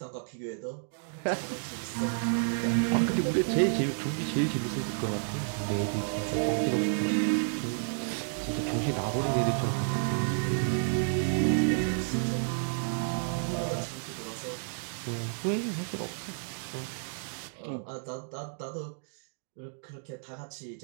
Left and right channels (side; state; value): left; silent; digital silence